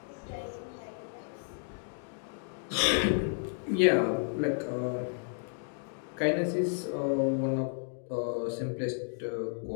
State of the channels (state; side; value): silent; right; digital silence